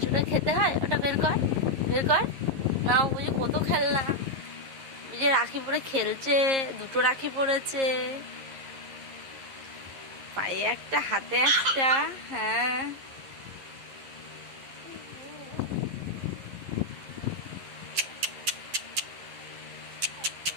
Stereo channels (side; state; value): left; late; 11 ms